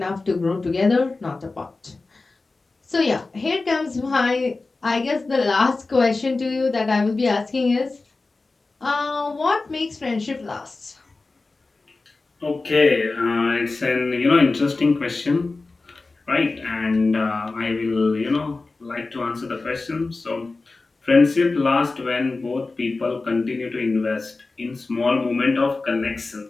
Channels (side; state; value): right; quieter; 3.6 dB